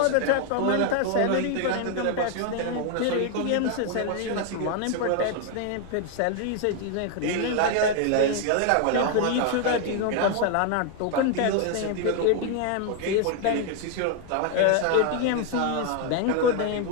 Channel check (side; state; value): both; different; correlation 0.00